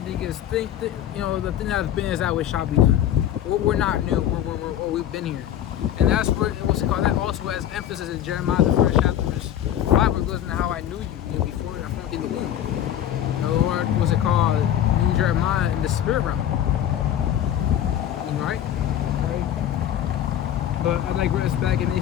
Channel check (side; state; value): right; quieter; 11.0 dB